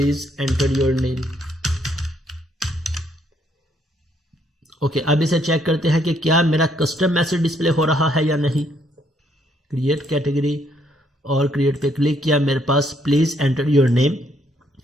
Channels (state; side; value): normal; both; correlation 0.70